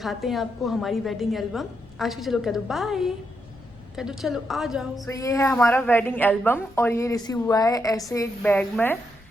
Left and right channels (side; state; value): left; noise; rumble, 27 dB below the sound